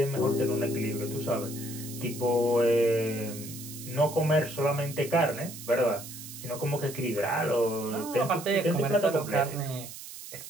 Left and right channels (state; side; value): noise; right; hiss, 12 dB below the sound